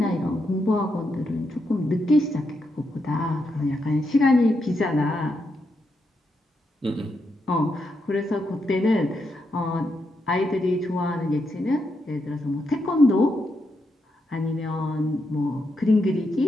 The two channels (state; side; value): normal; both; correlation 0.82